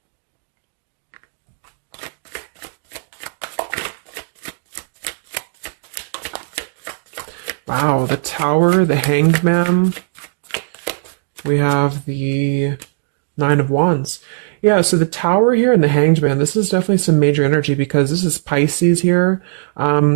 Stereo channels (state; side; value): silent; left; digital silence